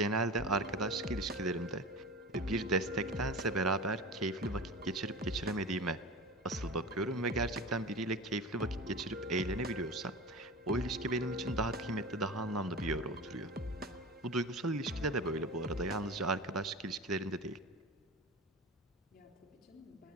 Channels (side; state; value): both; normal; correlation 0.31